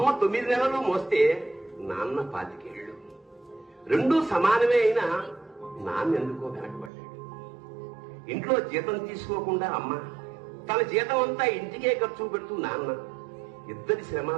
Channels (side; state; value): left; drops out; at 6.9 s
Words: 9 నెలలు మోస్తే నాన్న 25 ఏళ్ళు. రెండూ సమానమే అయినా నాన్న ఎందుకో వెనకబడ్డాడు. ఇంట్లో జీతం తీసుకోకుండా అమ్మ, తన జీతం అంతా ఇంటికే ఖర్చు పెడుతూ నాన్న. ఇద్దరి శ్రమ